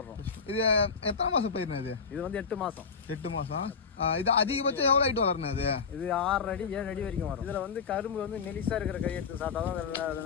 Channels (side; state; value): right; quieter; 5.6 dB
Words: இது எத்தனை மாசம் பயிர்னா இது? இது வந்து 8 மாசம். 8 மாசம். இது அதிகபட்சம் எவ்வளவு ஹைட் வளரணும் இது? இது 6 அடி 7 அடி வரைக்கும் வரும். இதுல வந்து கரும்பு வந்து மெலிசா இருக்கிற கை எடுத்து